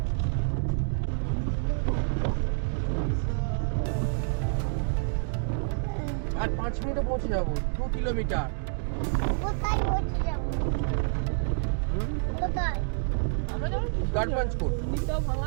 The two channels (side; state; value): left; silent; digital silence